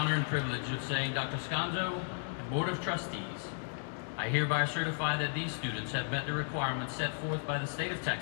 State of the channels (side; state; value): right; silent; digital silence